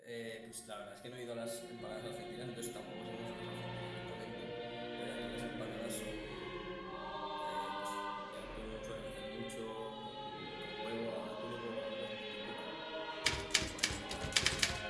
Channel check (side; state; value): both; identical; correlation 1.00